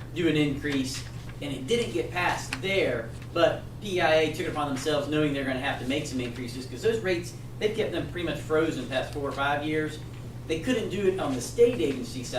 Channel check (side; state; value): both; identical; correlation 1.00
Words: do an increase, and it didn't get passed there, but PEIA took it upon themselves knowing they're going to have to make some increases, because those rates, they've kept them pretty much frozen the past 4 or 5 years. They couldn't do it on the state agency